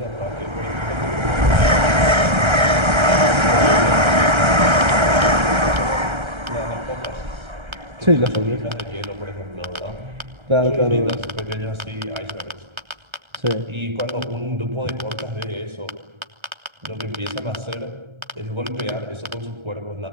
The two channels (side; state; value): left; late; 1.3 ms